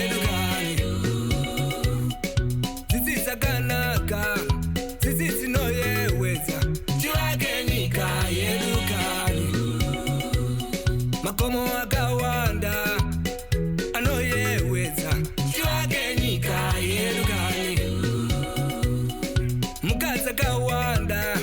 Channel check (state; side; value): identical; both; correlation 1.00